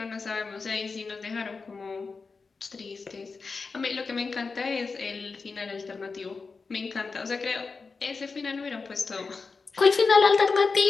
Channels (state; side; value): quieter; right; 4.5 dB